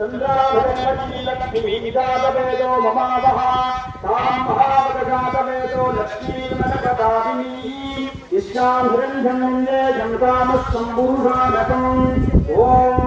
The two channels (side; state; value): both; identical; correlation 1.00